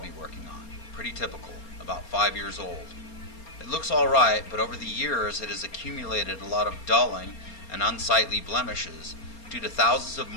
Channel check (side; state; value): right; late; 4.3 ms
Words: working on. Pretty typical, about 5 years old. It looks alright, but over the years it has accumulated a lot of dulling and unsightly blemishes due to thousands of